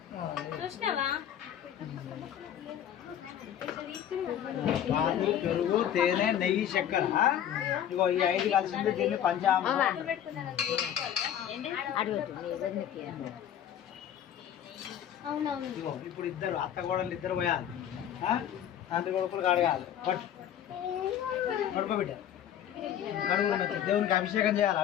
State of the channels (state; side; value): quieter; right; 10.1 dB